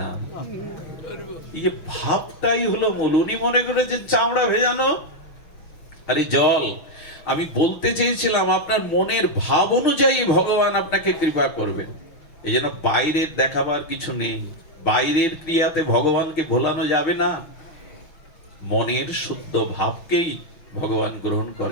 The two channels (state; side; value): late; right; 6.1 ms